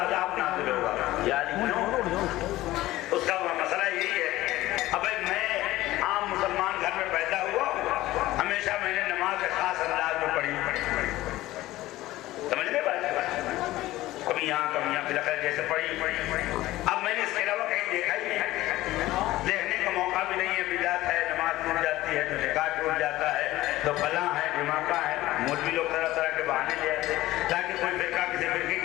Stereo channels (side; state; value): right; quieter; 16.7 dB